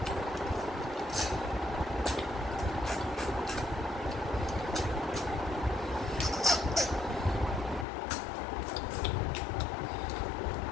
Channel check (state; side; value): drops out; right; at 7.9 s